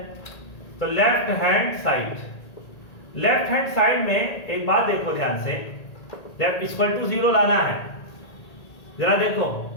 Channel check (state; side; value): late; right; 1.8 ms